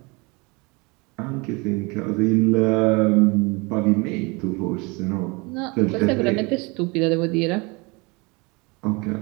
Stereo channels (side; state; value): left; quieter; 27.5 dB